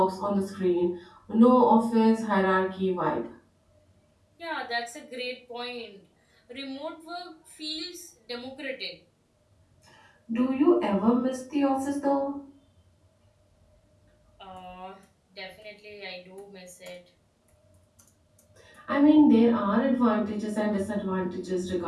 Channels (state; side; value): identical; both; correlation 1.00